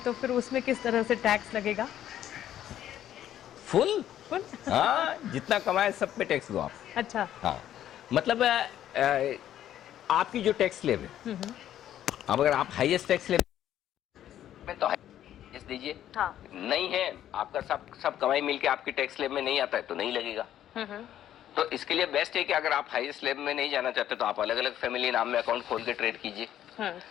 फिर उसमें किस तरह से टैक्स लगेगा? फुल। हाँ, जितना कमाए सब पे टैक्स दो आप। अच्छा। हाँ, मतलब आपकी जो टैक्स स्लैब है, अब अगर आप हाईएस्ट टैक्स स्लैब में तो हाईएस्ट दीजिए। हाँ। नहीं है आपका सब कमाई मिलके आपकी टैक्स स्लैब में नहीं आता है तो नहीं लगेगा। तो इसके लिए बेस्ट है कि अगर आप हाई स्लैब में नहीं जाना चाहते तो आप अलग अलग फैमिली नाम में अकाउंट खोल के ट्रेड कीजिए,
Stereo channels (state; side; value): quieter; right; 11.4 dB